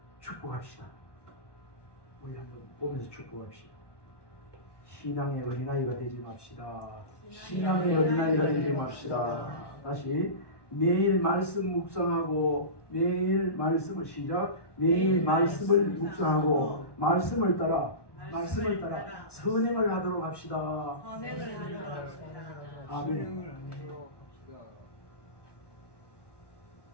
축복합시다. 우리 한번 보면서 축복합시다. 신앙의 어린아이가 되지 맙시다. 신앙의 어린아이가 되지 맙시다. 다시 매일 말씀 묵상하고 매일 말씀을 시작. 매일 말씀을 묵상하고 말씀을 따라 선행을 하도록 합시다. 선행을 하도록 합시다. 아멘.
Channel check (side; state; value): right; late; 1.1 ms